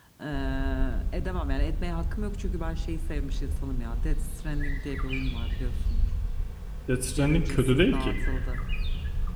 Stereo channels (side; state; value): both; identical; correlation 1.00